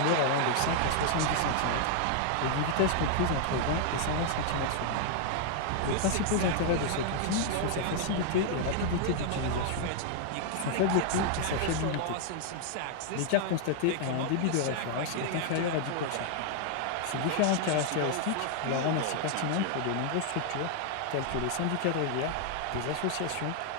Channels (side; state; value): both; different; correlation 0.00